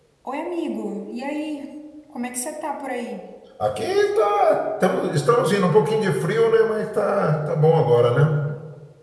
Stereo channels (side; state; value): both; identical; correlation 1.00